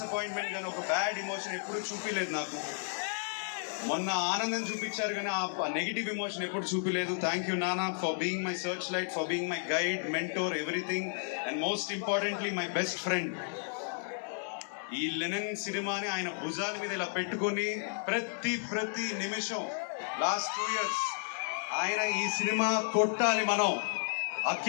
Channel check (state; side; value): silent; right; digital silence